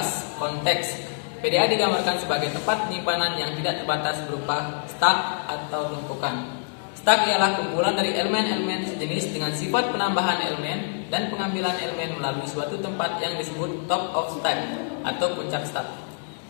konteks. PDA digambarkan sebagai tempat penyimpanan yang tidak terbatas berupa stack atau tumpukan. Stack ialah kumpulan dari elemen-elemen sejenis dengan sifat penambahan elemen dan pengambilan elemen melalui suatu tempat yang disebut top of stack atau puncak stack.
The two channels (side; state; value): right; silent; digital silence